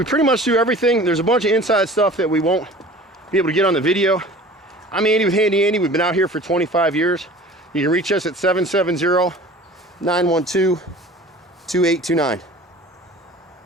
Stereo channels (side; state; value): both; normal; correlation 0.43